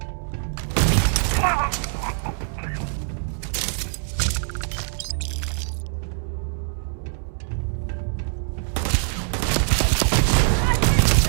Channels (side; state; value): left; silent; 63 dB below the other